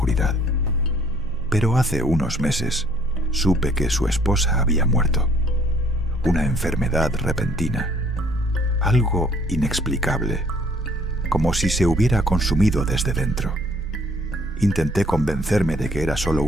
Pero hace unos meses supe que su esposa había muerto. Una enfermedad repentina, algo inexplicable, como si se hubiera consumido desde dentro. Intenté convencerme de que era solo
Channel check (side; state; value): both; normal; correlation 0.60